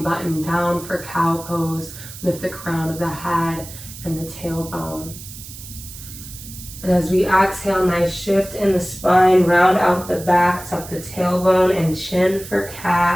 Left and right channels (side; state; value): right; noise; hiss, 14 dB below the sound